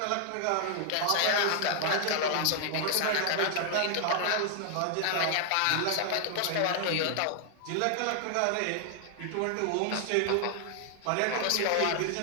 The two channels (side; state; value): both; different; correlation 0.00